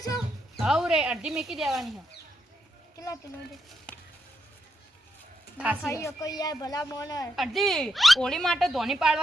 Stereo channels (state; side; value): normal; both; correlation 0.82